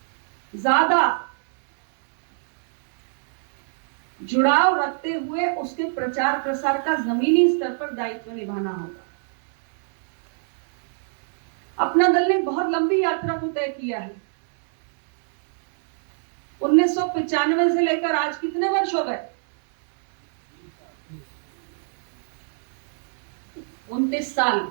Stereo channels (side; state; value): left; silent; digital silence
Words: ज्यादा जुड़ाव रखते हुए उसके प्रचार प्रसार का जमीनी स्तर पर दायित्व निभाना होगा। अपना दल ने बहुत लंबी यात्रा को तय किया है। 1995 से लेकर आज कितने वर्ष हो गए? 29 साल।